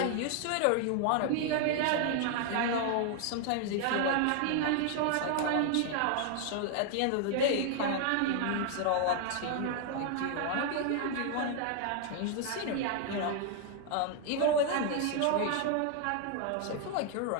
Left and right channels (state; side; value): different; both; correlation 0.00